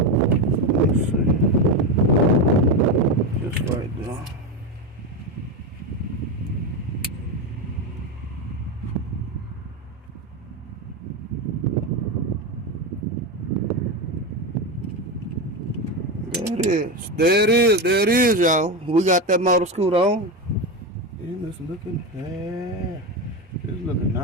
Let's see. Just right there. There it is, y'all. We got that motor scooter on. And it's looking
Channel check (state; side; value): normal; both; correlation 0.15